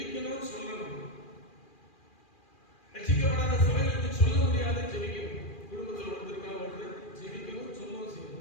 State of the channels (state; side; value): late; right; 2.4 ms